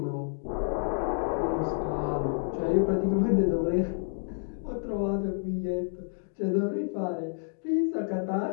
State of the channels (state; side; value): silent; right; digital silence